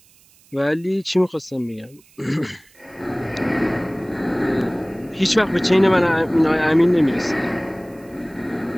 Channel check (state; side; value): noise; right; hiss, 29 dB below the sound